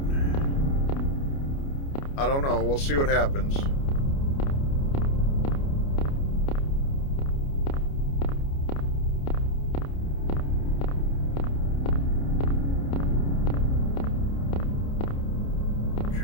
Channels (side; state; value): right; late; 29 ms